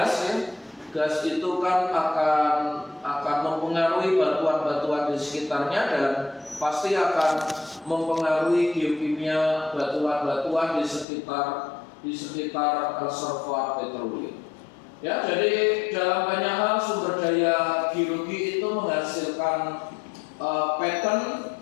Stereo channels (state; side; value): drops out; right; at 11.1 s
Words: ya. Gas itu kan akan mempengaruhi batuan-batuan di sekitarnya dan pasti akan mempengaruhi geokimia batuan-batuan di sekitar reservoir petroleum. Ya, jadi dalam banyak hal sumber daya geologi itu menghasilkan pattern